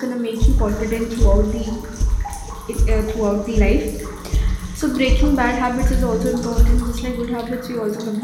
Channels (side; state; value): both; identical; correlation 1.00